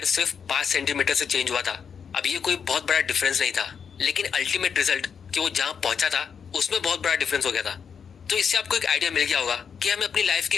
सिर्फ 5 सेंटीमीटर से चेंज हुआ था। अब ये कोई बहुत बड़ा डिफरेंस नहीं था, लेकिन अल्टीमेट रिजल्ट कि वो जहां पहुंचा था उसमें बहुत बड़ा डिफरेंस हो गया था। तो इससे आपको एक आइडिया मिल गया होगा कि हमें अपनी लाइफ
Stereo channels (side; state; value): right; quieter; 6.8 dB